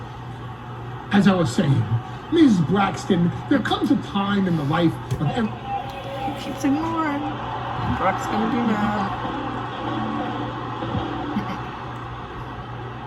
As I was saying, Ms. Braxton, there comes a time in the life of every... He keeps ignoring. Brock's gonna be mad.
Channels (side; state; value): both; identical; correlation 1.00